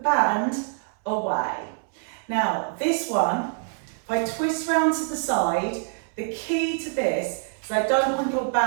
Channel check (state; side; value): silent; left; 61 dB below the other